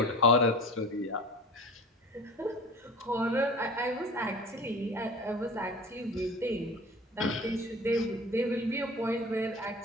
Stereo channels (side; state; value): both; normal; correlation 0.38